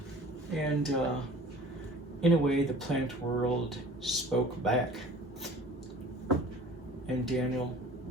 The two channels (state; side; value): normal; both; correlation 0.46